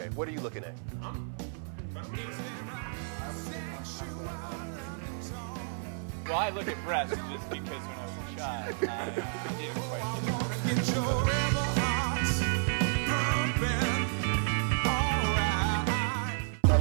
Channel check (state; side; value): silent; left; 57 dB below the other